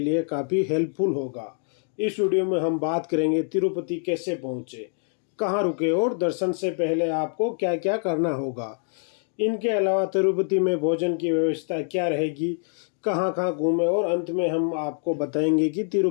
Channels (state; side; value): silent; right; 60 dB below the other